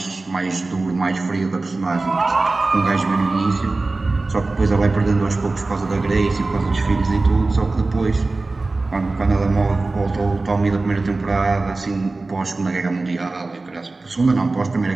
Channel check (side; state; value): left; quieter; 3.4 dB